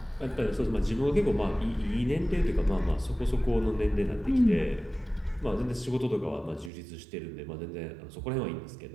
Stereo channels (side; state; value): left; drops out; at 6.7 s